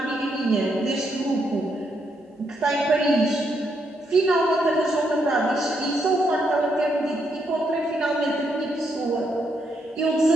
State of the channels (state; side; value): normal; both; correlation 0.78